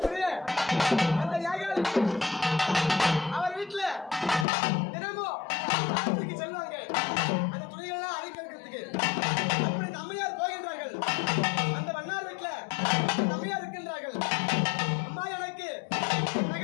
அந்த யாகால் அவர் வீட்டுல தினமும் ஆற்றுக்கு செல்வாங்க. அந்த துணிகள்லாம் அழிக்கிறதுக்கு. அப்படி இந்த அம்மையார் போகின்றார்கள். அந்த வண்ணார் வீட்டுல அந்த அம்மையார் இருக்கின்றார்கள். அம்மா, எனக்கு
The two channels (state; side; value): drops out; right; at 4.5 s